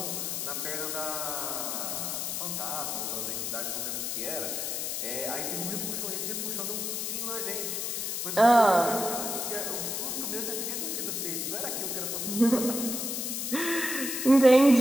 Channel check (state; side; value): noise; left; hiss, 2 dB below the sound